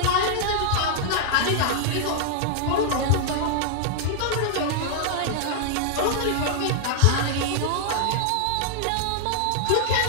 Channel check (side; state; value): both; different; correlation -0.01